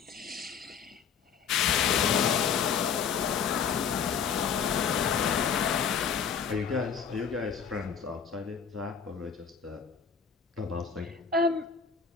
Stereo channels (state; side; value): quieter; right; 6.9 dB